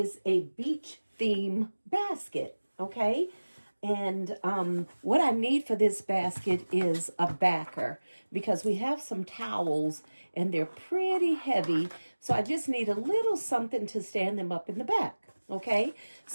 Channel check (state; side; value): inverted; both; correlation -1.00